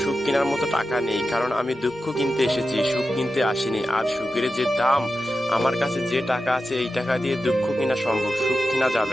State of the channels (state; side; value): normal; both; correlation 0.91